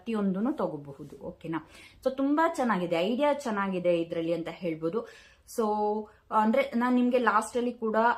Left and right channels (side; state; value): both; identical; correlation 1.00